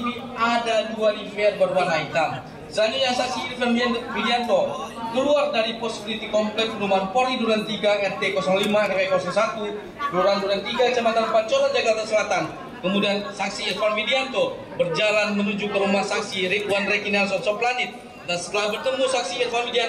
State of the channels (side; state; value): both; identical; correlation 1.00